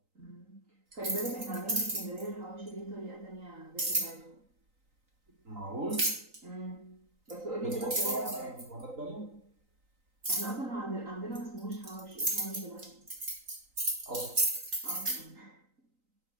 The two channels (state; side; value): late; left; 3.9 ms